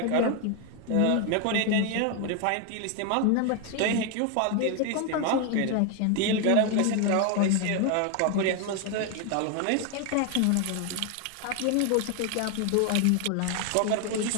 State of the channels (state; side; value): different; both; correlation 0.01